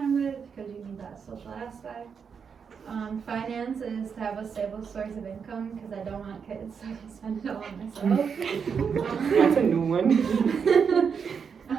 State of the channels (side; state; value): left; quieter; 6.4 dB